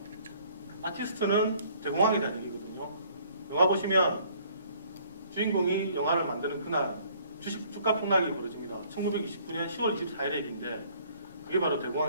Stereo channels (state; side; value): inverted; both; correlation -0.59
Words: 아티스트는 대공황에 대한 얘기거든요. 영화 보시면 주인공이 영화를 만드는 그날 주가 폭락이 벌어집니다. 1929년 10월 24일의 얘기인데 그게 바로